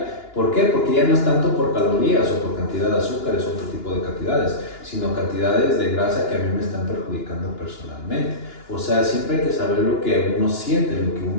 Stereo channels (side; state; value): right; late; 2.9 ms